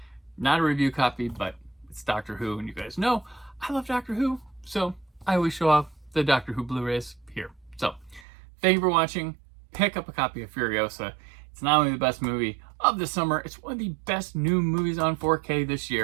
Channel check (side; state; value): left; drops out; at 8.2 s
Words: Not a review copy, but it's Doctor Who, and you guys know I love Doctor Who, so I always show off the Doctor Who Blu-rays here. So thank you for watching. Pick up a copy of Furiosa. It's not only the best movie of the summer, it's one of the best new movies on 4K this